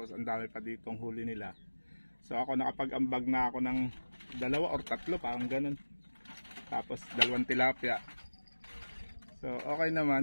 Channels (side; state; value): both; inverted; correlation -1.00